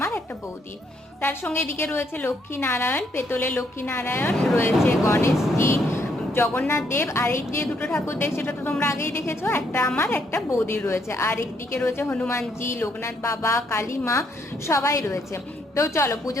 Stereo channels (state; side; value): normal; both; correlation 0.72